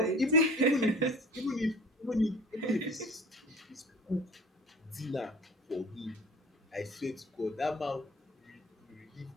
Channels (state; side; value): normal; both; correlation 0.43